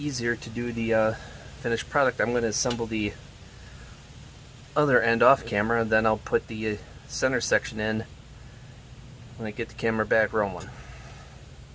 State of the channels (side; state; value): both; identical; correlation 1.00